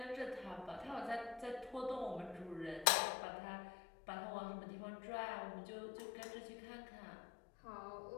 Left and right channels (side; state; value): right; drops out; at 2.9 s